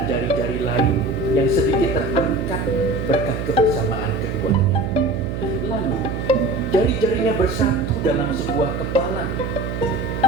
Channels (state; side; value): noise; right; hum, 4 dB below the sound